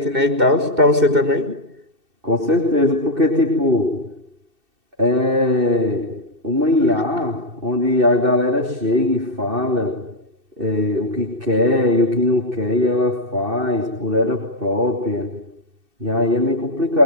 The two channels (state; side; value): late; left; 2.6 ms